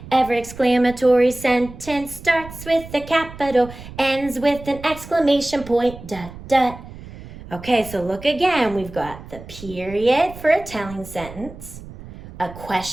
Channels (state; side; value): noise; right; rumble, 15 dB below the sound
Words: Every exclamatory sentence starts with a capital, ends with an exclamation point, dot, dot. Okay, so look again. We've got the period for a telling sentence, a